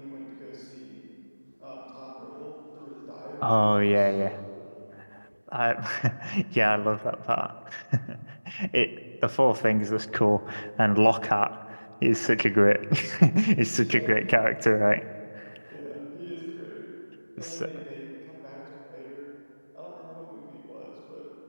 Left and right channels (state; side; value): inverted; both; correlation -1.00